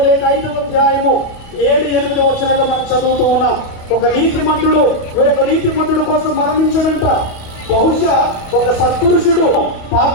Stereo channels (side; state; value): right; late; 28 ms